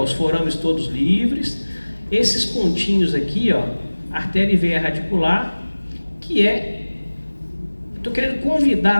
forames todos livres, esses pontinhos aqui, artéria e veia radicular, que estou querendo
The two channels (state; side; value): inverted; both; correlation -1.00